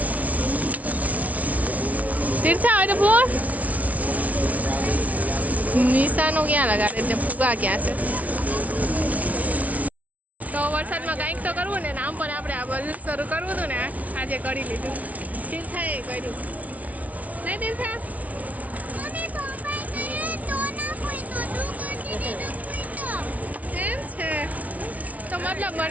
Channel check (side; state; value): left; late; 0.070 ms